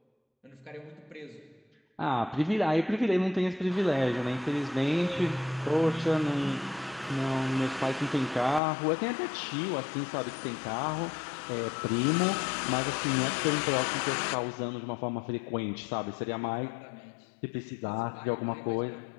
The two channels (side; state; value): right; drops out; at 8.6 s